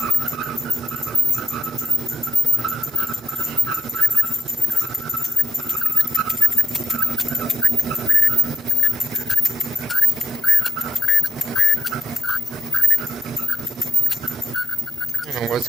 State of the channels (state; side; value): normal; both; correlation 0.84